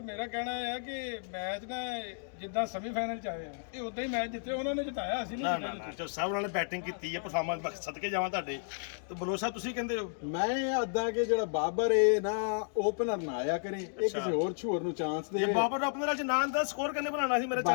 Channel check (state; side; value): silent; right; digital silence